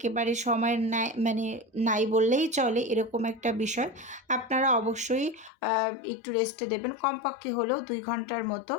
সময় নাই, মানে নাই বললেই চলে, এরকম একটা বিষয়। আপনারা অবশ্যই একটু রেস্টে দেবেন, কমপক্ষে হলেও 2 ঘন্টার মতো।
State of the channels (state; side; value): drops out; right; at 5.5 s